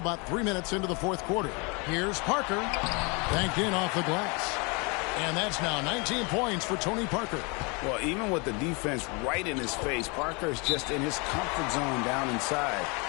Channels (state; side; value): quieter; right; 30.6 dB